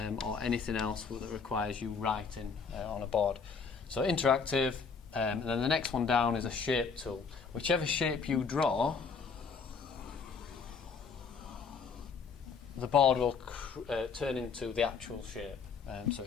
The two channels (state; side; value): quieter; right; 5.5 dB